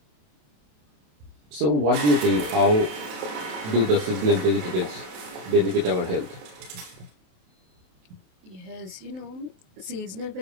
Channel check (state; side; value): late; left; 27 ms